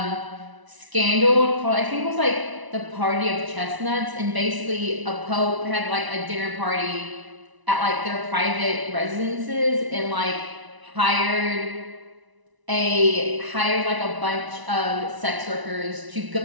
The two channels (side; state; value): left; late; 1.0 ms